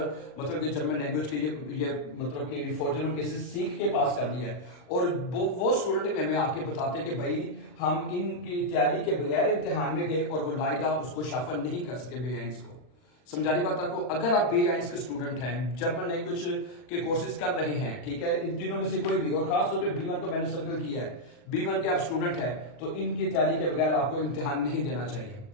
मतलब कि जर्मन लैंग्वेज के ये मतलब कि फॉर जर्मन केसेस सीख के पास कर लिया है। और वो स्टूडेंट हमें आके बताते हैं कि भाई हम इनकी तैयारी के बगैर इम्तिहान में गए और वो लाइदा उसको शाफल नहीं कर सके B1 को। समझानी बात आपको, अगर आप B1 के स्टूडेंट हैं, जर्मन लैंग्वेज के कोर्सेज कर रहे हैं, ठीक है, इन तीनों में से कोई भी, और खासतौर पे B1 को मैंने सर्कल किया है, B1 के आप स्टूडेंट हैं तो इनकी तैयारी के बगैर आपको इम्तिहान नहीं देना चाहिए।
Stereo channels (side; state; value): right; late; 40 ms